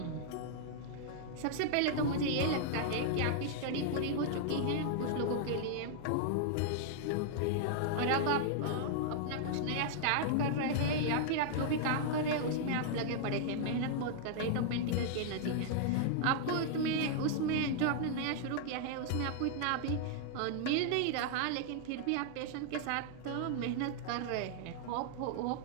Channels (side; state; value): both; different; correlation -0.01